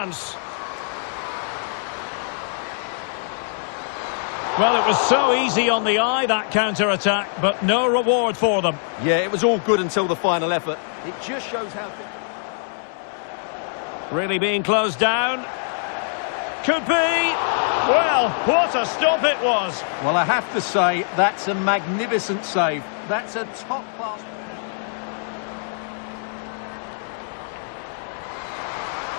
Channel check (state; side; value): silent; right; digital silence